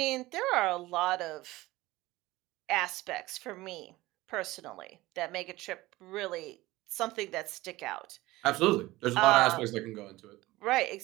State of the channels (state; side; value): quieter; left; 18.7 dB